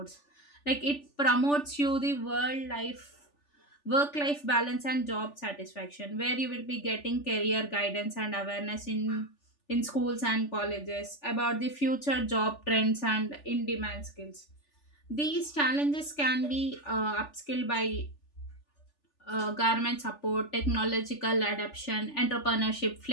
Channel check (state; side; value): late; right; 3.4 ms